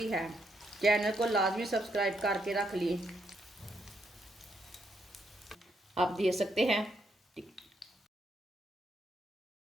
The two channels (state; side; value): normal; both; correlation 0.77